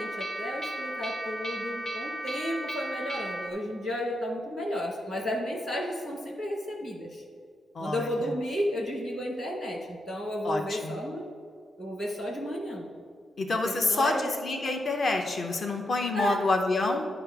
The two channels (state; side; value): normal; both; correlation 0.83